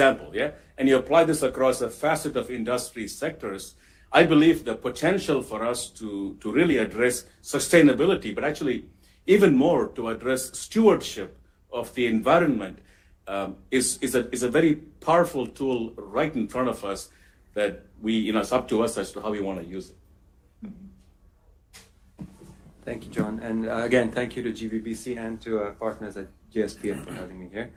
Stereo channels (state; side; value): identical; both; correlation 1.00